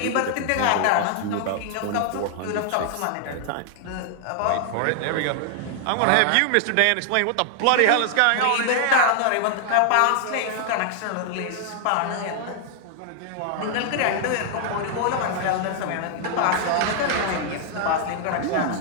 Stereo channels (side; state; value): both; different; correlation 0.00